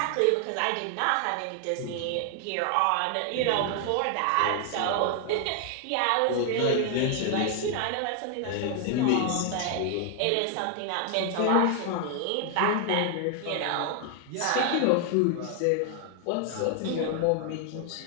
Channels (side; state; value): both; different; correlation 0.00